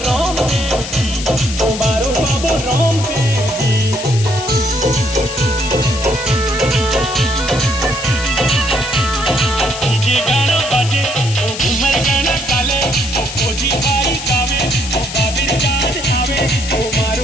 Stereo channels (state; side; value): noise; left; hiss, 9 dB below the sound